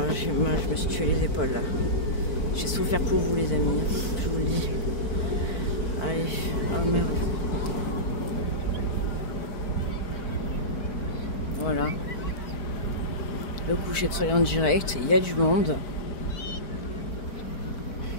j'ai mal, je me suis tué les épaules là. J'ai souffert pour vous les amis, je vous le dis. Allez, oh merde. Voilà. Le coucher de soleil en direct, il y a du monde.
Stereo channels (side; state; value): right; late; 4.5 ms